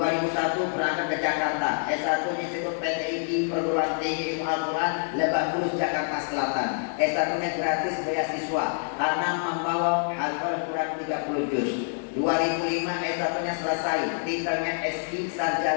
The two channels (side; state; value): right; silent; digital silence